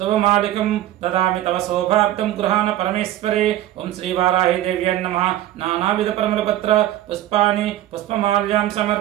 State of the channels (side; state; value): left; quieter; 13.6 dB